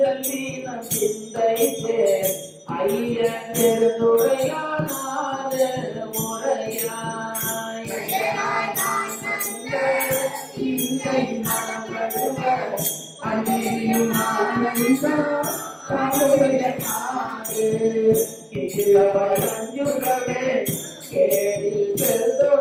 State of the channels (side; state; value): both; identical; correlation 1.00